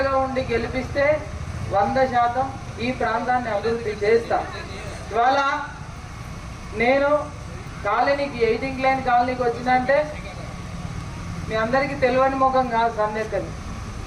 ఉండి గెలిపిస్తే 100% ఈ ప్రాంతాన్ని అభివృద్ధి చేస్తా. ఇవాళ నేను కాలనీకి 18 లైన్ కాలనీకి వచ్చినంటే మీ అందరికీ తెలియని ముఖం కాదు. సందేశం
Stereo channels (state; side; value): identical; both; correlation 1.00